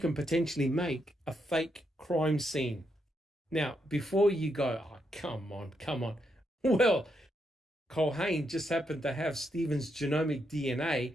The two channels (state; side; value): normal; both; correlation 0.80